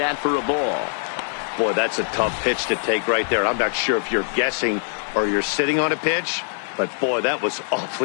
for a ball. Boy, that's a tough pitch to take right there. I'm not sure if you're guessing or you're sitting on a pitch, but boy, that was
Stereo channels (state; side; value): silent; right; digital silence